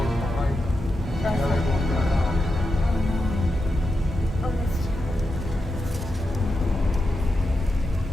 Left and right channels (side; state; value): both; normal; correlation 0.88